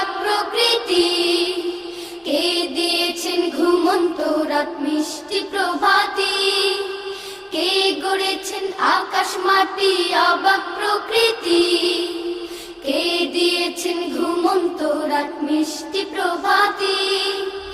প্রকৃতি, কে দিয়েছেন ঘুমন্ত রাত মিষ্টি প্রভাতি। কে গড়েছেন আকাশ মাটি অবাক প্রকৃতি, কে দিয়েছেন ঘুমন্ত রাত মিষ্টি প্রভাতি।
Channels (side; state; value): both; identical; correlation 1.00